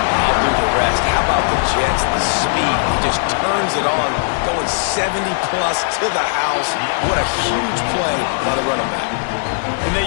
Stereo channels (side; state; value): right; silent; 68 dB below the other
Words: I'll do the rest. How about the Jets? The speed. He just turns it on, going 70-plus to the house. What a huge play by the running back. And they